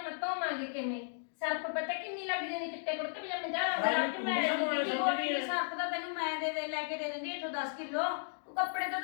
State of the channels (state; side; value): silent; right; digital silence